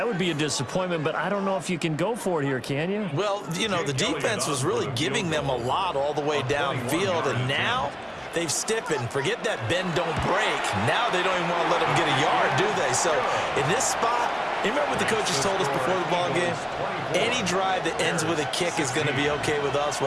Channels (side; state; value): both; identical; correlation 1.00